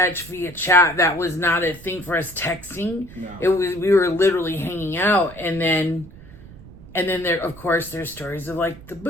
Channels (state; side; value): noise; right; rumble, 18 dB below the sound